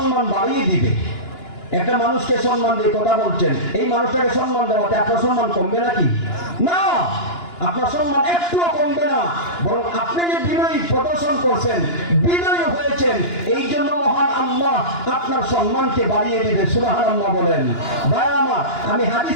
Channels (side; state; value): right; late; 2.9 ms